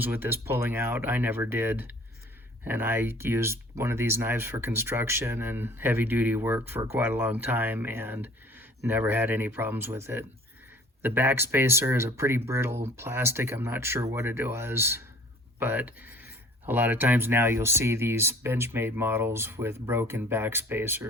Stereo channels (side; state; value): both; normal; correlation 0.50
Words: with this pulling out. I never did. And I used one of these knives for construction and heavy duty work for quite a long time and never had any problems with it. The back spacer is a pretty brittle plastic. I'm not sure what it was, but a lot of times now you'll see these Benchmade models with broken back